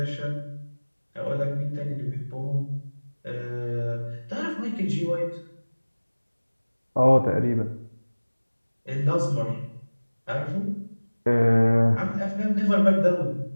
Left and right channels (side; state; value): both; inverted; correlation -1.00